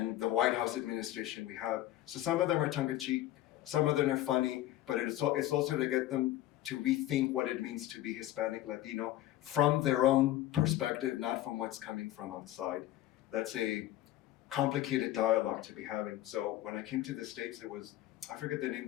the White House administration we have. So some of them are tongue-in-cheek, some of them are funny, but it's also to get them to rethink what it means to be Hispanic, Latino, from their own perspective, not from what's coming from outside. That's a complicated dialogue to be having. So when I came to the States, it was, I forget the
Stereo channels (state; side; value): quieter; right; 14.6 dB